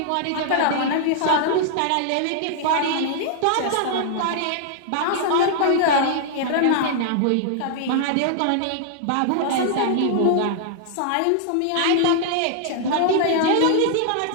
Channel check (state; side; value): different; both; correlation -0.01